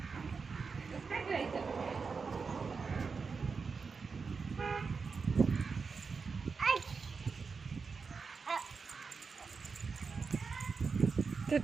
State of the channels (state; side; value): quieter; left; 5.0 dB